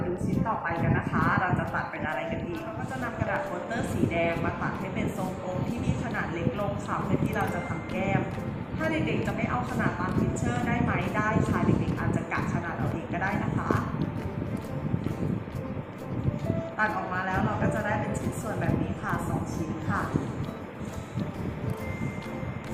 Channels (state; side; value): identical; both; correlation 1.00